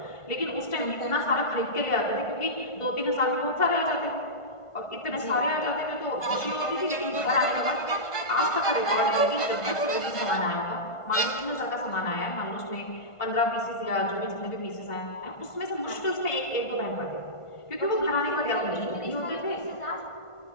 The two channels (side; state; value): right; late; 1.5 ms